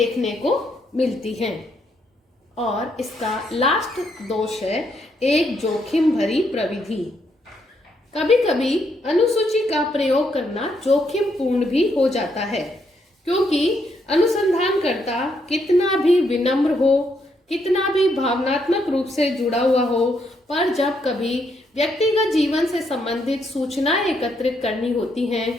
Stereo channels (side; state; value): both; normal; correlation 0.76